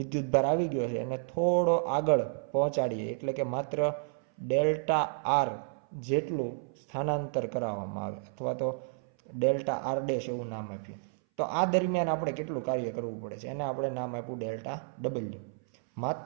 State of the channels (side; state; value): left; silent; 57 dB below the other